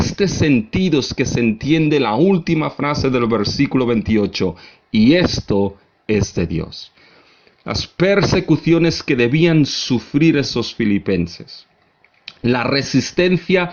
sentido es que se entiende la última frase del versículo 28, y esto es de Dios. Las persecuciones que debían sufrir esos filipenses, la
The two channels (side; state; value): both; identical; correlation 1.00